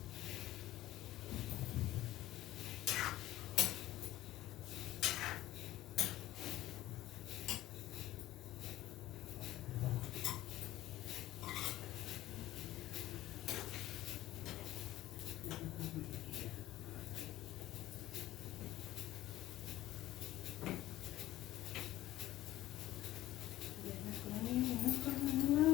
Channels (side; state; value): right; quieter; 15.4 dB